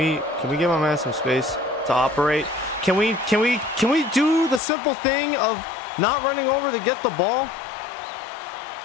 we give my man some space to operate? Can we do the simple thing of not running over to get the ball?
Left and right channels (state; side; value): drops out; right; at 4.6 s